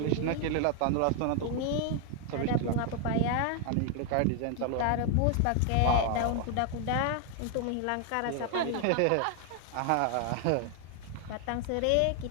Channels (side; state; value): both; different; correlation 0.00